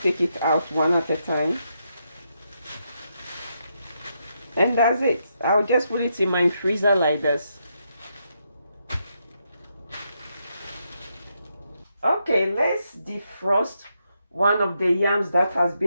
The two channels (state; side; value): inverted; both; correlation -0.81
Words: it out one at a time. And that's it. I'll just put it in my freezer like this. Okay, let's defrost one of the yams that has